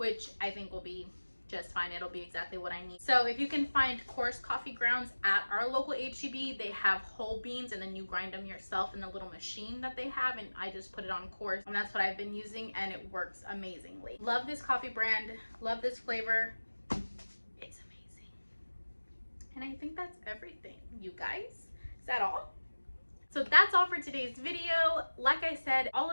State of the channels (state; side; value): inverted; both; correlation -1.00